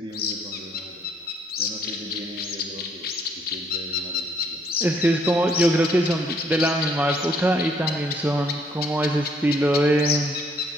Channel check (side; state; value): both; normal; correlation 0.67